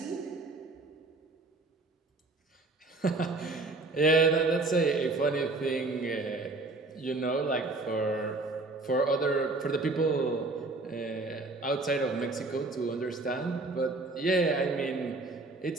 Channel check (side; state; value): left; quieter; 3.3 dB